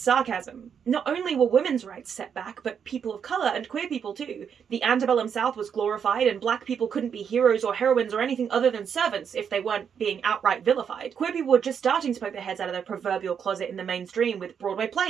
sarcasm. Not only were women's rights set back, but people of colour and queer people too. The antebellum South was glorified and black people couldn't be heroes or heroines or anything other than servants if they weren't being outright vilified. Queer people were just starting to poke their heads out of their proverbial closet in the mainstream with Broadway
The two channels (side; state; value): left; quieter; 7.4 dB